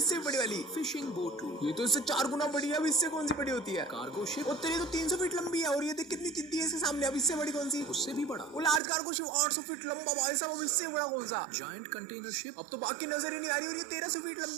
भी बड़ी वाली फिशिंग बोटू। ये तो इससे 4 गुना बड़ी है। अब इससे कौन सी बड़ी होती है? Cargo ship. और तेरी तो 300 फीट लंबी है और ये देख कितनी जिद्दी है इसके सामने। अब इससे बड़ी कौन सी? उससे भी बड़ा। वो लार्ज कार्गो शिप 800 फीट लंबा भाई साहब। अब इससे बड़ा कौन सा? Giant container ship. अब तो बाकी नजर ही नहीं आ रही। और ये 1300 फीट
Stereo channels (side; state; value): left; drops out; at 8.8 s